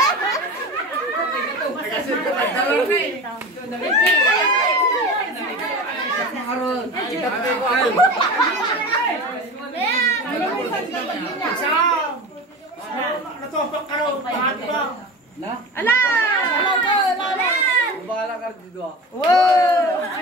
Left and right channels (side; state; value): both; normal; correlation 0.32